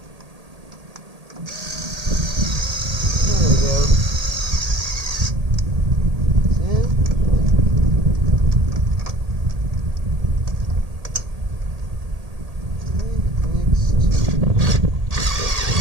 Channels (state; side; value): late; left; 1.8 ms